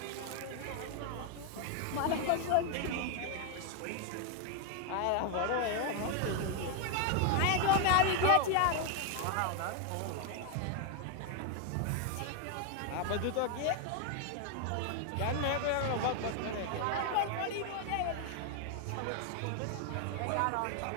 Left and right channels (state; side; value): different; both; correlation 0.01